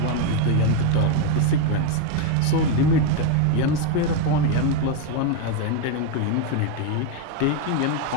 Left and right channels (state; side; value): different; both; correlation 0.02